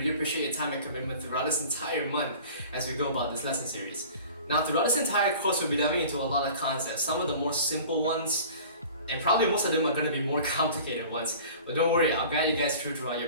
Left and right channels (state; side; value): inverted; both; correlation -0.43